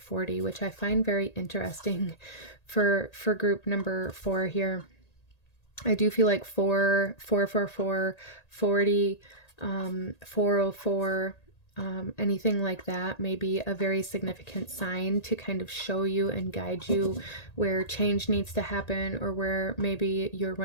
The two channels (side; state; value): right; late; 1.8 ms